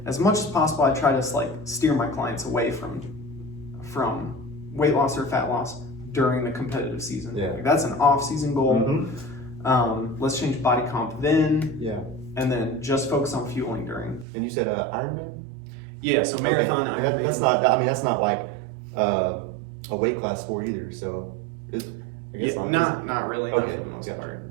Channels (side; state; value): left; drops out; at 14.2 s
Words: as much as possible, I try to like steer my clients away from weight loss or fat loss during the competitive season. Like, that's an off-season goal. Let's change body comp then. And then just focus on fueling during. And you said Ironman? Yeah, so marathon Ironman. That's not like a weight class sport either. So I guess not really, not for the most part.